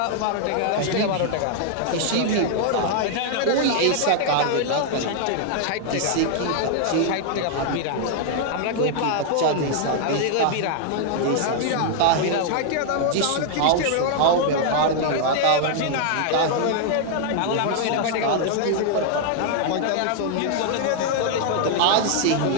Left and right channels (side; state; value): both; different; correlation 0.00